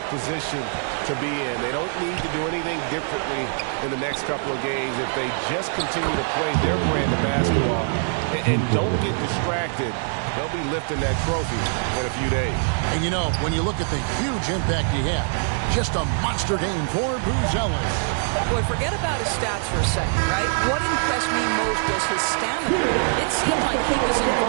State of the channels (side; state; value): left; silent; 62 dB below the other